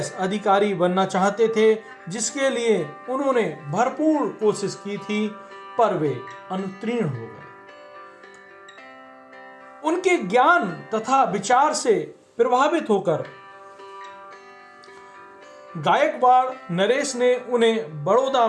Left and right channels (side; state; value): both; identical; correlation 1.00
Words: अधिकारी बनना चाहते थे, जिसके लिए उन्होंने भरपूर कोशिश की थी, पर वे अनुत्तीर्ण हो गए। उनके ज्ञान तथा विचार से प्रभावित होकर गायकवाड़ नरेश ने उन्हें बड़ौदा